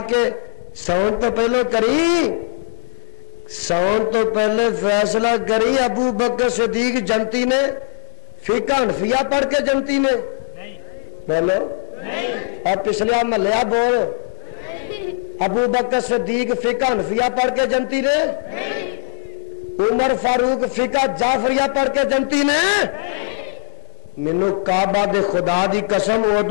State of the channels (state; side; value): silent; right; 62 dB below the other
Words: کے سون تو پہلے کری سون تو پہلے فیصلہ کری ابو بکر صدیق جنتی نے فقہ حنفیہ پڑھ کے جنتی نے بولو اور پچھلے محلہ بول ابو بکر صدیق فقہ حنفیہ پڑھ کے جنتی نے عمر فاروق فقہ جعفریہ پڑھ کے جنتی نے مینوں کعبہ دے خدا دی قسم